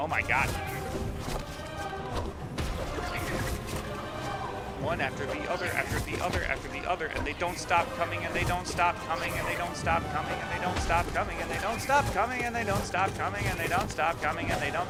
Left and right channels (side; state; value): both; identical; correlation 1.00